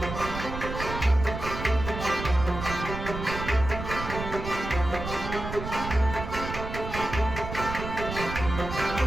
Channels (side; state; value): right; noise; rumble, 7 dB below the sound